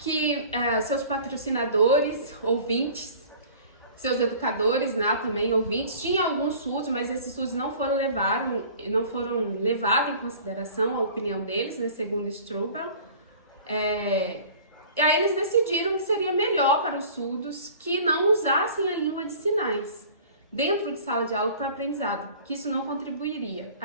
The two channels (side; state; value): both; inverted; correlation -0.45